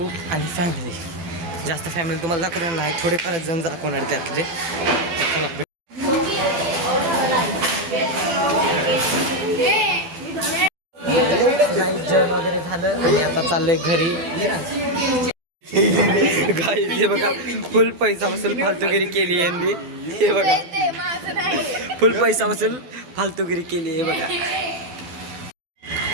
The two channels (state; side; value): late; left; 12 ms